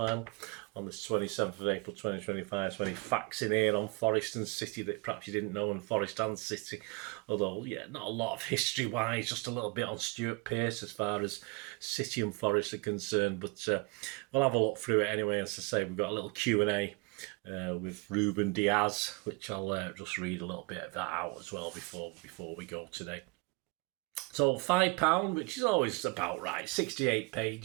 on the 27th of April 2025. So any facts in here on Forest and City that perhaps you didn't know, and Forest and City, although yeah, not a lot of history wise, just a little bit on Stuart Pearce as far as City and Forest are concerned, but we'll have a look through it anyway. As I say, we've got a little Q&A with Ruben Diaz, which I'll just read a little bit of that out as well before we go today. So £5, which is always about right, 68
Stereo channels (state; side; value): quieter; left; 27.0 dB